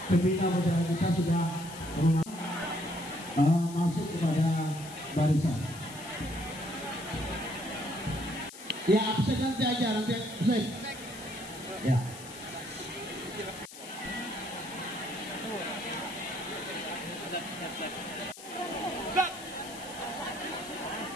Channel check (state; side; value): noise; left; hiss, 15 dB below the sound